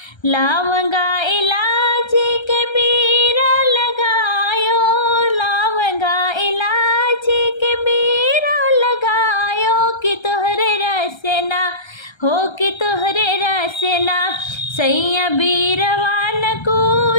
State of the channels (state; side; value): late; right; 1.3 ms